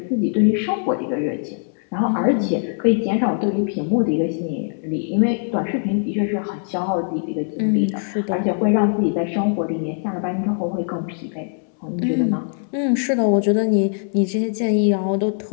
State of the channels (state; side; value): silent; right; 65 dB below the other